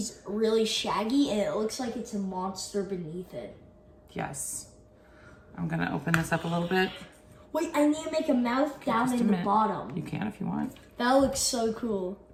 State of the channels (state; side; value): identical; both; correlation 1.00